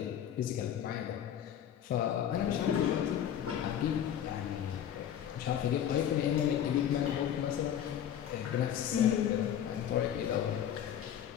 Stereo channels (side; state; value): right; quieter; 9.9 dB